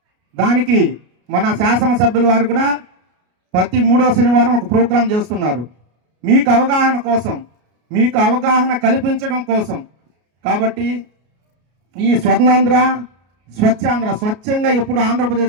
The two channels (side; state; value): left; late; 33 ms